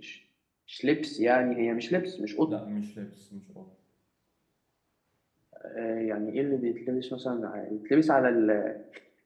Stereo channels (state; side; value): identical; both; correlation 1.00